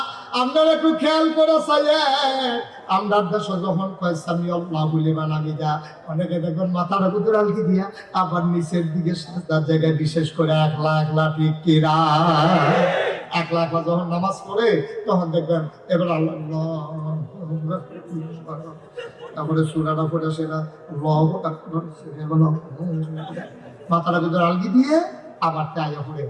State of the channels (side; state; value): both; identical; correlation 1.00